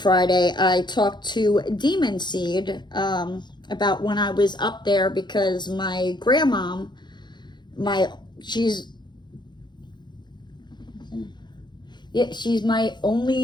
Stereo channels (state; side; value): late; right; 0.21 ms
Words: I talked to Demon Seed about when I was up there, because my grandmom, she's my